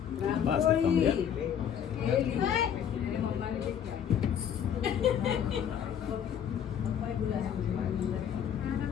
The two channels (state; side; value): quieter; right; 8.8 dB